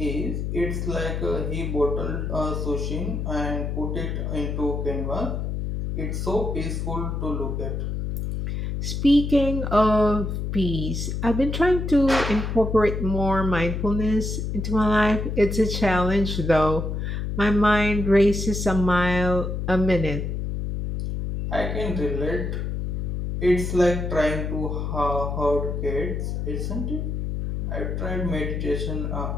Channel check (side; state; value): left; noise; hum, 2 dB below the sound